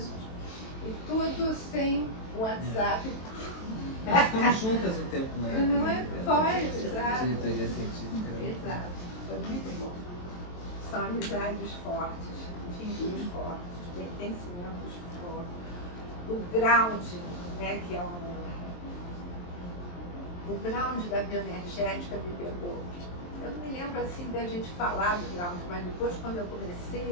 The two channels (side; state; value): right; late; 23 ms